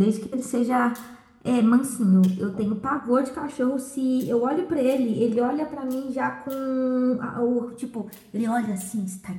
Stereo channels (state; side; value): identical; both; correlation 1.00